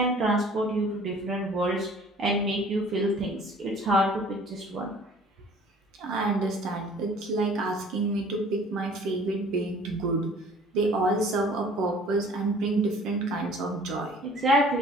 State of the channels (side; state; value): both; normal; correlation 0.51